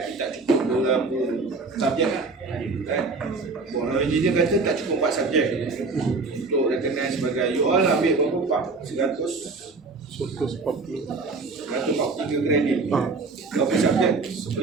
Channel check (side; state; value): left; quieter; 4.0 dB